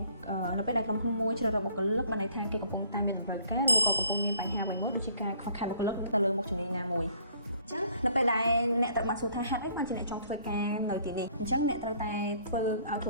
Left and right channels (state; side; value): inverted; both; correlation -0.59